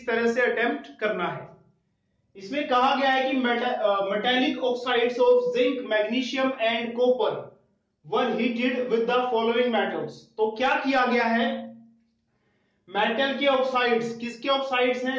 तरह से अटेम्प्ट करना है। इसमें कहा गया है कि metallic oxides of zinc, magnesium and copper were heated with the following metals. तो क्या किया गया है, मेटल के ऑक्साइड्स, किसके ऑक्साइड्स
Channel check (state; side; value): identical; both; correlation 1.00